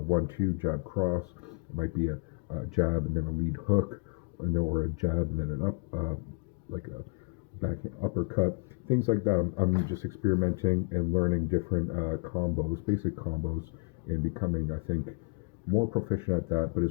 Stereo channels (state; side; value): quieter; right; 36.0 dB